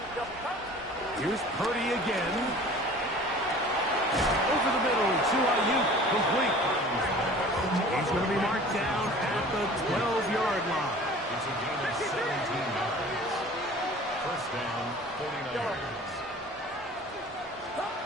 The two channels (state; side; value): normal; both; correlation 0.45